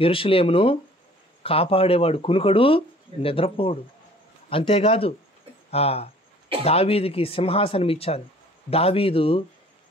కాపాడేవాడు కునుకడు నిద్రపోడు. అంతేకాదు దావీదుకి సింహాసనం ఇచ్చాను. దావీదు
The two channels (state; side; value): normal; both; correlation 0.52